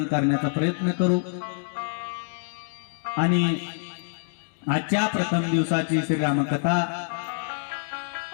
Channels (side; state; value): right; silent; digital silence